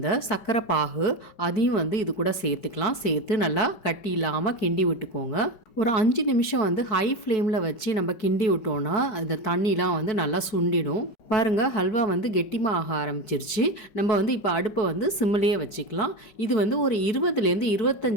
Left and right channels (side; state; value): right; late; 4.6 ms